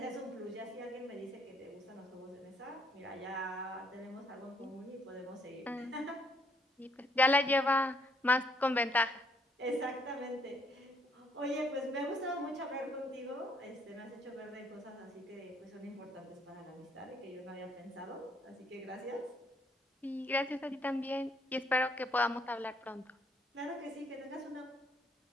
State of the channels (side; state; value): both; normal; correlation 0.67